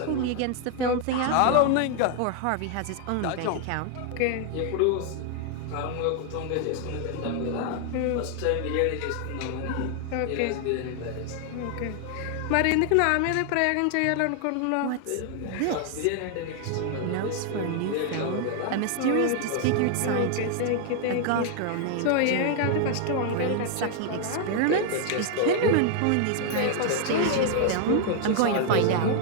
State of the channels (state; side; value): different; both; correlation 0.00